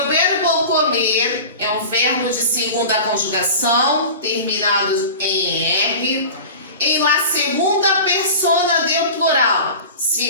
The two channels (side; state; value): both; inverted; correlation -0.35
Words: verbo comer é um verbo de segunda conjugação, terminado em R, em la segunda persona del plural.